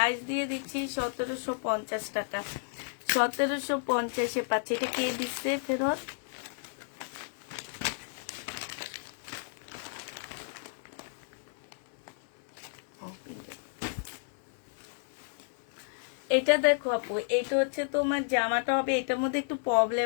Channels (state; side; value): silent; right; 56 dB below the other